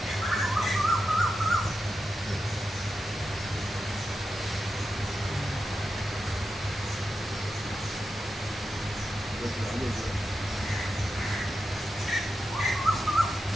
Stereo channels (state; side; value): normal; both; correlation 0.89